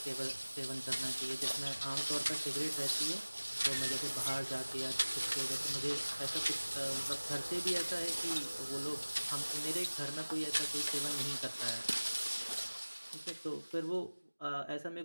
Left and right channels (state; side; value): inverted; both; correlation -1.00